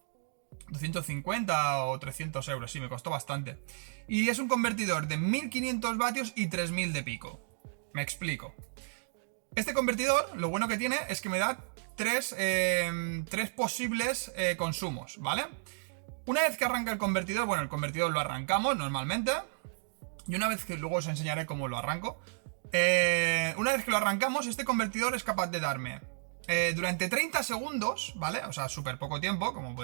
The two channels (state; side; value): silent; left; digital silence